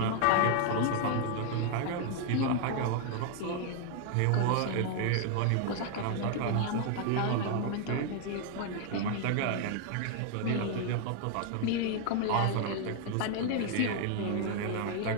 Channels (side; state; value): both; different; correlation 0.00